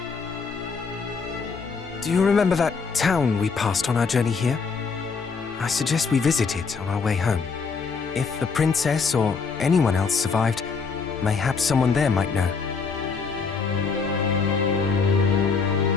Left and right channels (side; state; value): right; quieter; 5.2 dB